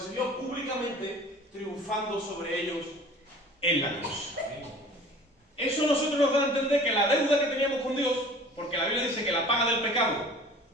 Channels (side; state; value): both; normal; correlation 0.45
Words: exhibió públicamente, triunfando sobre ellos en la cruz. Eso a nosotros nos da a entender que la deuda que teníamos con Dios, porque la Biblia dice que la paga del pecado